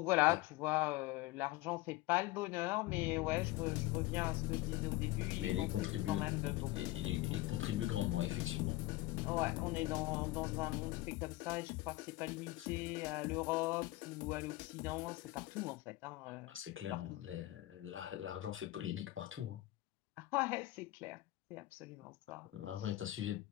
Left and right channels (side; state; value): right; quieter; 18.2 dB